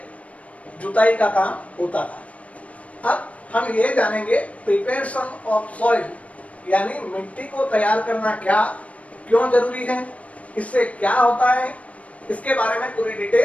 जुताई का काम होता था। अब हम ये जानेंगे प्रिपरेशन ऑफ सॉइल, यानी मिट्टी को तैयार करना क्या, क्यों जरूरी है, इससे क्या होता है, इसके बारे में पूरी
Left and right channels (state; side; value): late; right; 0.066 ms